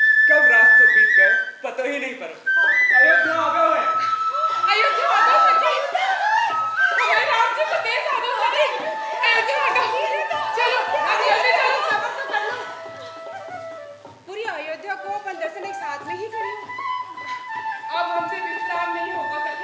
कब रास्तों बीत गए पता ही नहीं पड़ा। अयोध्या आ गए हैं। अयोध्या आ गए सखी। हमारे राम जी को देश आ गए सखी। अयोध्या आ गए। चलो, अभी जल्दी चलो। सबर तो कर लो। पूरी अयोध्या को अपन दर्शन एक साथ में ही करें। अब हमसे विश्राम नहीं होगा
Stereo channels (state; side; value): identical; both; correlation 1.00